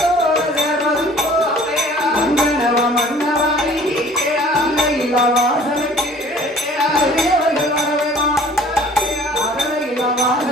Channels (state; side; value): normal; both; correlation 0.51